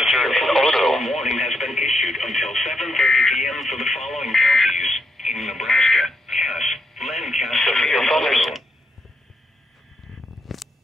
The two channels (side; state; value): both; normal; correlation 0.79